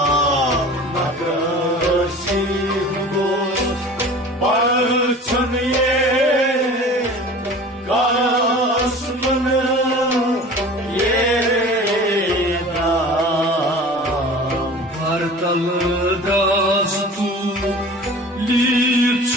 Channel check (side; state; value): both; normal; correlation 0.40